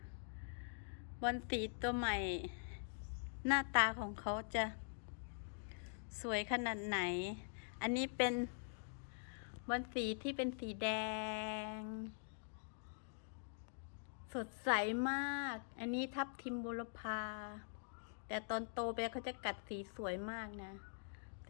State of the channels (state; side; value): silent; right; digital silence